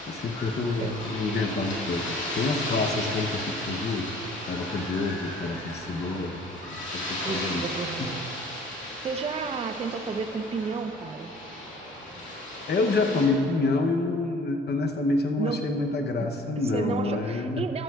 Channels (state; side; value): normal; both; correlation 0.52